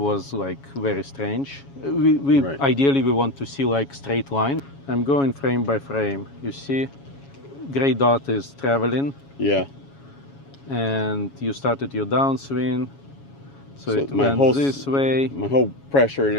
like very strange. We Right. Ideally we want to see like straight line. I'm going frame by frame. You see, gray dot is traveling, Yeah. and you started your downswing. So it my went whole this way. My whole pressure and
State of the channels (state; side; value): late; right; 7.2 ms